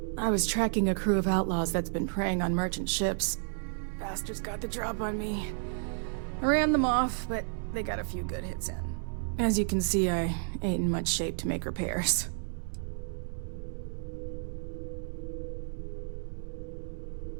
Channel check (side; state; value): left; silent; digital silence